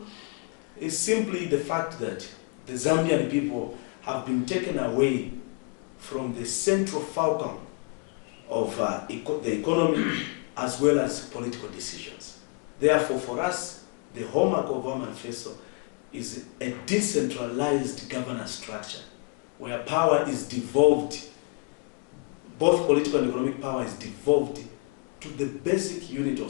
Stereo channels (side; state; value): right; quieter; 32.9 dB